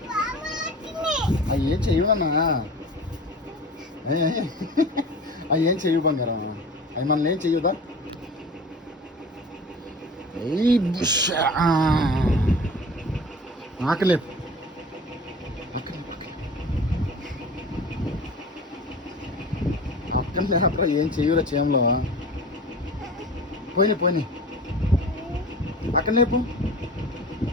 ఏం చేయవు నాన్న. ఏం చేయవు బంగారం. అవి మనల్ని ఏం చెయ్యదా? ఆకలేపు. అక్కడ లేపరా. ఏం చెయ్యరా చేయంలో. పోయినాయి పోయినాయి. అక్కడ లేపు.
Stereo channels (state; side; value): normal; both; correlation 0.38